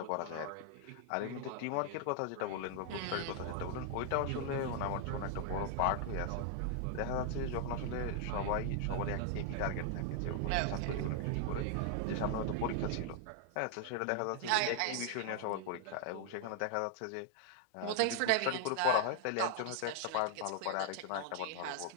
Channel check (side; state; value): both; different; correlation 0.00